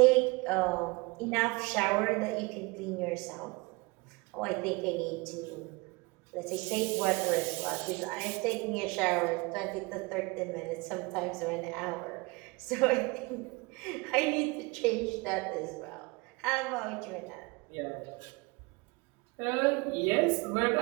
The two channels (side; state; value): left; quieter; 26.0 dB